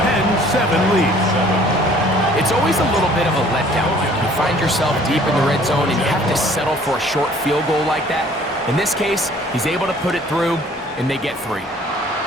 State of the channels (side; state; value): both; normal; correlation 0.55